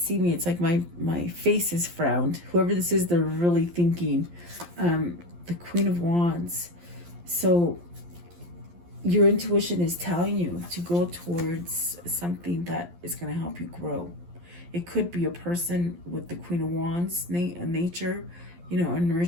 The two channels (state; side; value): late; left; 11 ms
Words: me, it's like my face is frowned. Whoever this is, they're really thinking. The Queen of Wands. So your intuition is telling you to go towards something that is going to help you grow. It could be a person with the Queen of Wands nature, you know, a